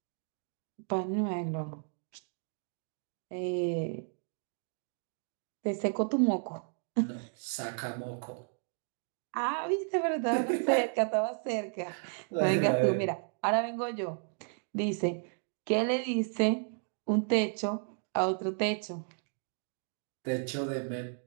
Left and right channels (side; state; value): left; silent; 55 dB below the other